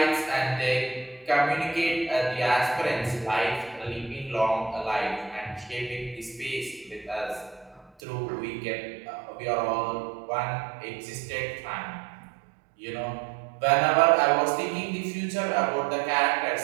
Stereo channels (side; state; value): left; drops out; at 8.0 s